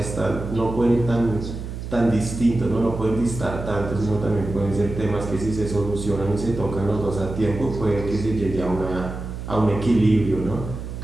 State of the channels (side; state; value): right; noise; hum, 8 dB below the sound